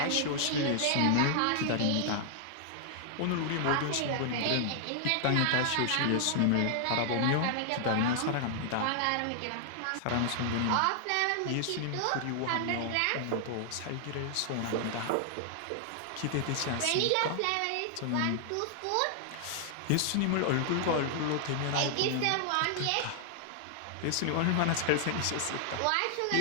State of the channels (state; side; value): different; both; correlation -0.01